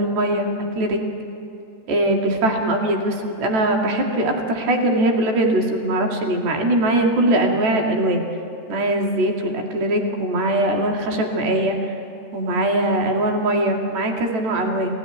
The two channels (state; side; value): late; left; 14 ms